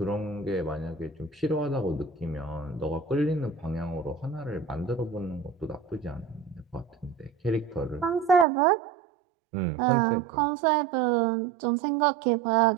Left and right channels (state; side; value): drops out; left; at 8.5 s